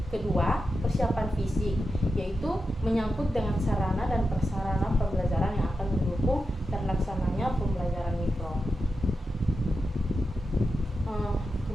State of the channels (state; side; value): normal; both; correlation 0.89